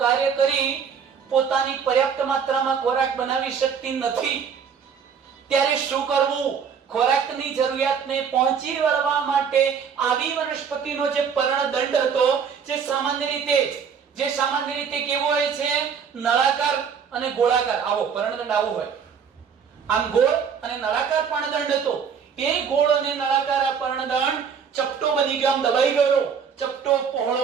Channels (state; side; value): quieter; left; 6.8 dB